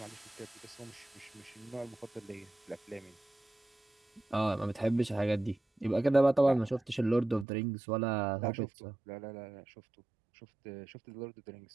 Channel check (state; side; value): drops out; left; at 7.5 s